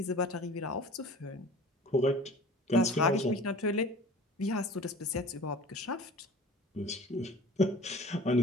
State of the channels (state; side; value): normal; both; correlation 0.43